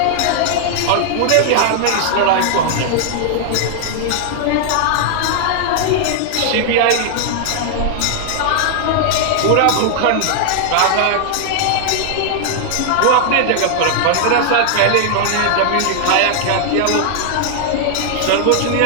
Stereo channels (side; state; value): both; different; correlation -0.01